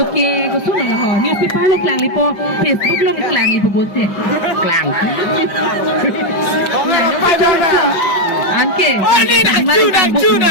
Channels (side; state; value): right; late; 5.3 ms